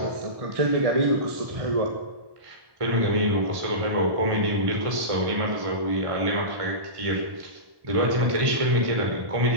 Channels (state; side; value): late; left; 1.1 ms